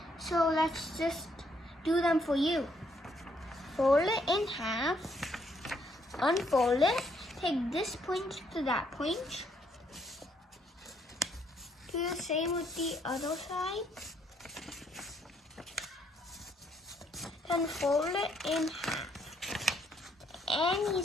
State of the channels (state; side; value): normal; both; correlation 0.70